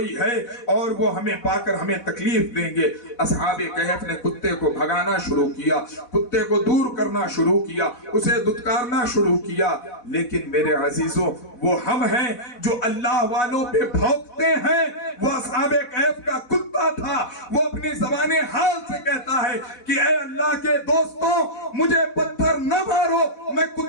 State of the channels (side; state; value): right; late; 4.1 ms